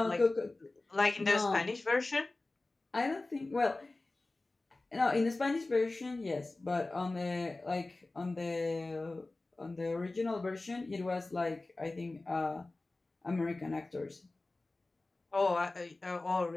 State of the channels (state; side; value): quieter; right; 3.1 dB